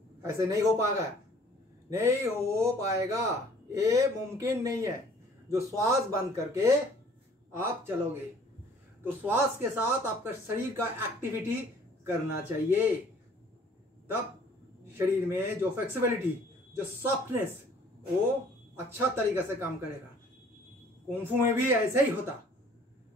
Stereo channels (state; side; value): normal; both; correlation 0.55